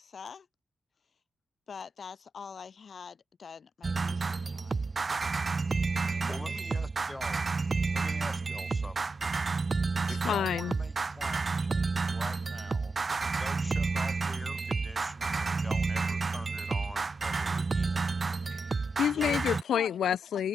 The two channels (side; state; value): both; normal; correlation 0.87